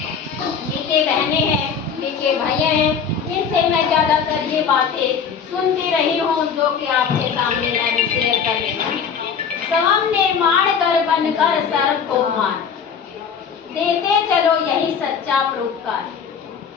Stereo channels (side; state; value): right; quieter; 6.7 dB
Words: बहनें हैं, मीठे भैया हैं, इनसे मैं ज़्यादातर ये बातें सुनती रही हूँ जो कि आपके सामने मैं भी शेयर कर रही हूँ। स्वयं निर्माण कर बनकर सर्व को मान, देते चलो यही सच्चा परोपकार।